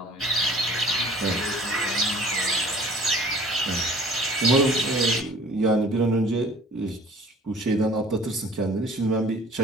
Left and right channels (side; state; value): both; normal; correlation 0.48